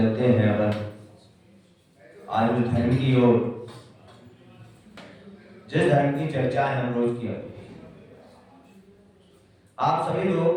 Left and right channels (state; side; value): identical; both; correlation 1.00